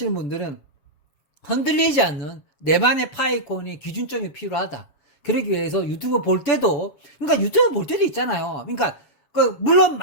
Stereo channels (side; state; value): right; late; 7.3 ms